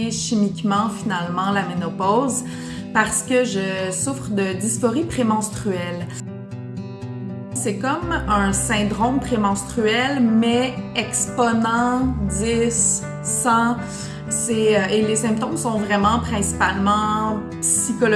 chimiquement finalement la ménopause parce que je souffre de dysphorie prémenstruelle. C'est comme un syndrome prémenstruel, mais exponent 10, 100. Et les symptômes sont vraiment principalement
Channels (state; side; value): identical; both; correlation 1.00